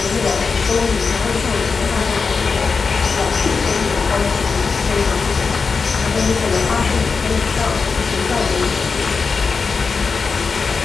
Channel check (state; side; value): quieter; right; 4.9 dB